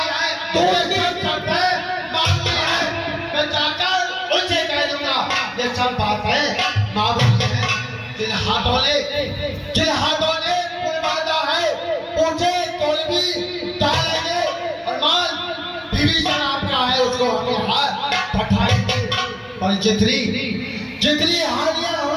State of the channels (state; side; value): identical; both; correlation 1.00